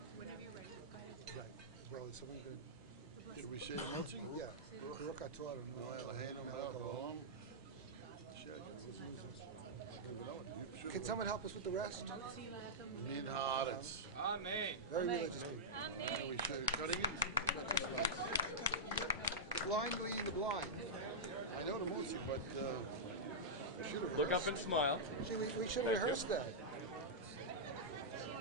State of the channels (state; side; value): normal; both; correlation -0.11